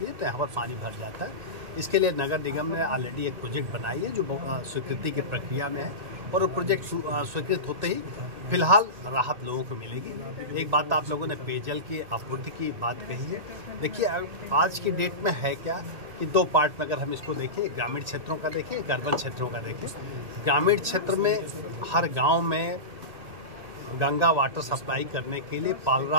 है तो यहाँ पर पानी भर जाता है। इसके लिए नगर निगम ने ऑलरेडी एक प्रोजेक्ट बनाई है जो स्वीकृति की प्रक्रिया में है, और वो प्रोजेक्ट स्वीकृत होते ही फिलहाल राहत लोगों को मिलेगी। एक बात आप लोगों ने पेयजल की आपूर्ति की बात कही है। देखिए आज की डेट में है क्या कि दो पार्ट में अगर हम इसको देखें, ग्रामीण क्षेत्रों का देखें, एक अर्बन क्षेत्रों का देखें। ग्रामीण क्षेत्र में हर गाँव में गंगा वाटर सप्लाई करने के लिए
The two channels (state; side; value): late; left; 2.1 ms